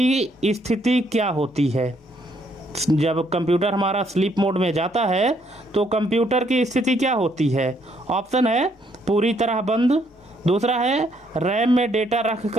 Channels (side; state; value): both; normal; correlation 0.70